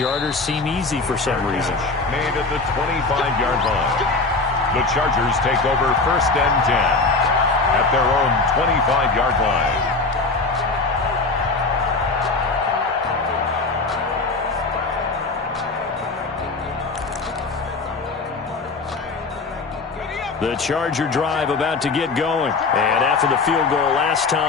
seem easy for some reason. Made at the 25-yard line. The Chargers take over 1st and 10 at their own 25-yard line. The Charger drive about to get going. And after the field goal last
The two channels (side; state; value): right; quieter; 3.8 dB